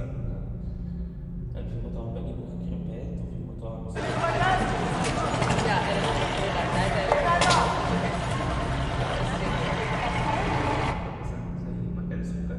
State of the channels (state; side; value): identical; both; correlation 1.00